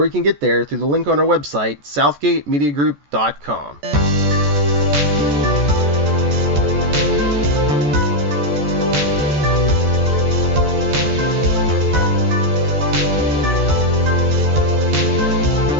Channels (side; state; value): left; late; 14 ms